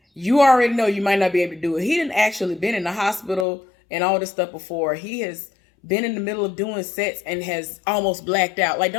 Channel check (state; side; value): drops out; right; at 3.5 s